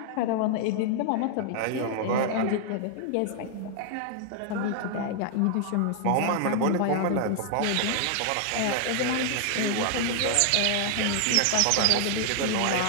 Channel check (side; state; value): both; different; correlation 0.00